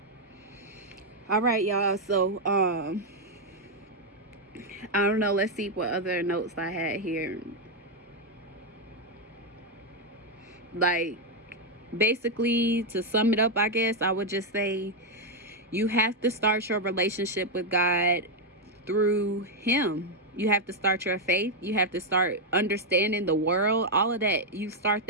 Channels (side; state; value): both; normal; correlation 0.01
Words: All right, y'all. So I don't know. Let's see what other notes I had here. Like, basically, to sum it up, I guess I would just say you have to start your relationship with God through him. You have to start your faith. You have to start understanding the world. All of that, you start